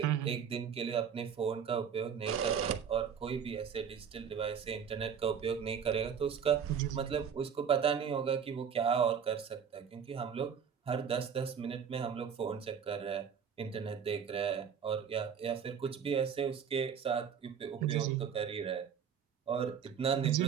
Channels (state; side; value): quieter; left; 7.4 dB